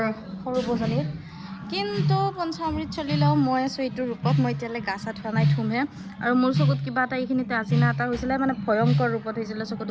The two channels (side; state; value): both; identical; correlation 1.00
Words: সৰু বজনীৰ কিন্তু পঞ্চামৃত চলিলেও মই আছোঁ এইটো ৰূপত মই এতিয়ালৈ গা চা ধোৱা নাই ধুমহে আৰু মোৰ চকুত কিবা এটা এইখিনিতে আজিনা এটা হৈছিলে মানে ভয়ংকৰ ৰূপত হৈছিলে